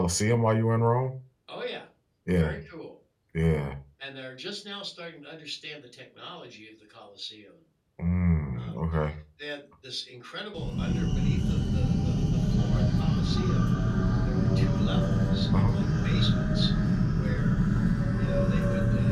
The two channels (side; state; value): both; identical; correlation 1.00